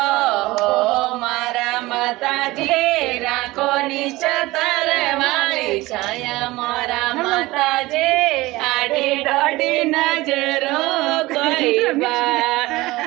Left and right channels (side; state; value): left; quieter; 19.8 dB